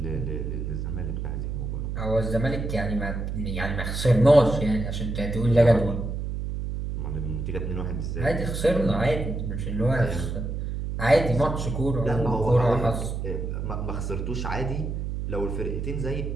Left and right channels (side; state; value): right; noise; hum, 3 dB below the sound